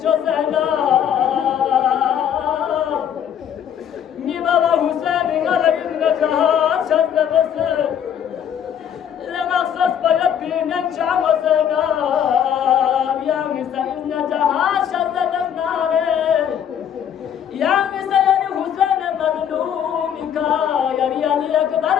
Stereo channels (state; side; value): quieter; right; 9.0 dB